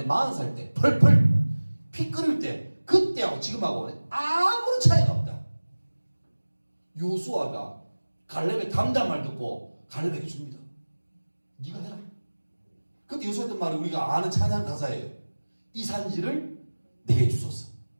40살 때 펄펄 피 끓을 때 그때하고 지금하고 아무런 차이가 없다. 요수아가 갈렙의 담담 말 듣고 갈렙에게 줍니다. 네가 해라. 그때 요수아 했던 말이 우리가 아는 찬양 가사예요. 이 산지를 내게 주소서.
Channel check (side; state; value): both; inverted; correlation -1.00